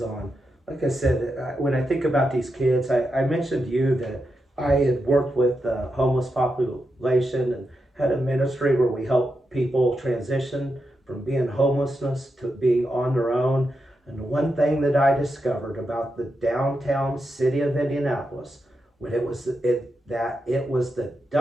Like I said, when I think about these kids, I mentioned to you that I had worked with the homeless population and had a ministry where we help people transition from being homelessness to being on their own. And the one thing that I discovered about the downtown city of Indianapolis, when it was the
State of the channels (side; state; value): both; normal; correlation 0.86